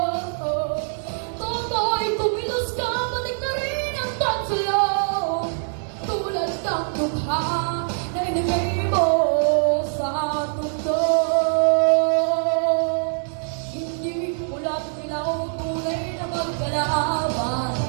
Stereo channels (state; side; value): silent; left; digital silence